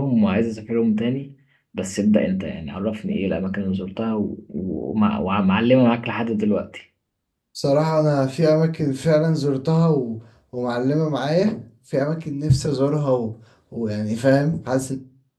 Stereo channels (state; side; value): identical; both; correlation 1.00